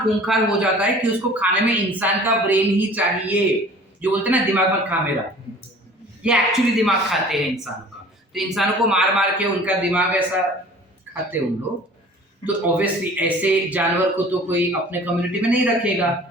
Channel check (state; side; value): normal; both; correlation 0.46